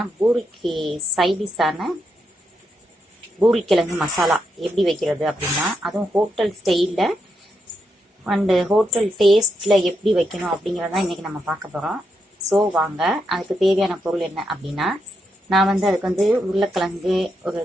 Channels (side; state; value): both; normal; correlation 0.82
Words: பூரிக்கு சைடிஷான பூரிக்கிழங்கு மசாலா எப்படி வைக்கிறது அப்படின்னா, அதுவும் ஹோட்டல் ஸ்டைலில் அண்டு ஹோட்டல் டேஸ்ட்டில் எப்படி வைக்கணும் அப்படிங்கிறதான் இன்றைக்கி நம்ம பார்க்க போகிறோம். ஸோ வாங்க, அதுக்கு தேவையான பொருள் என்ன அப்படின்னா, நான் வந்து அதுக்கு வந்து உருளைக்கிழங்கு ஒரு